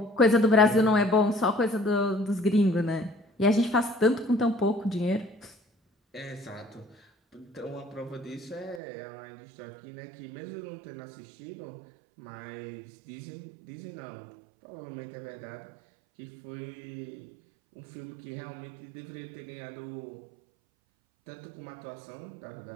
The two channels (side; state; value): left; drops out; at 8.8 s